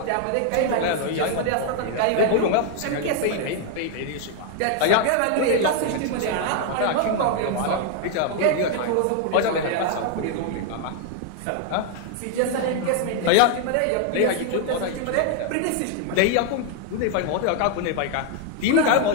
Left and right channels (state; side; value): different; both; correlation 0.00